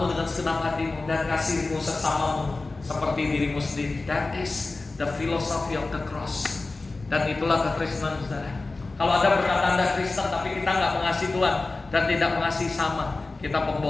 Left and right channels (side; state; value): right; quieter; 3.4 dB